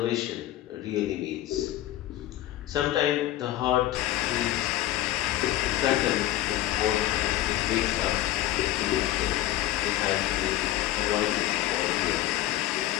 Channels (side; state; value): right; quieter; 14.5 dB